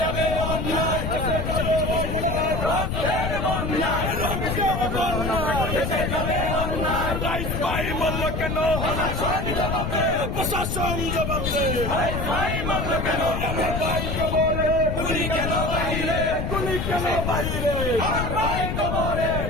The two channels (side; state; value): left; noise; rumble, 2 dB below the sound